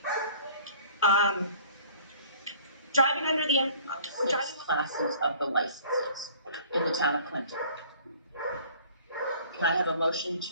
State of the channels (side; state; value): both; inverted; correlation -0.51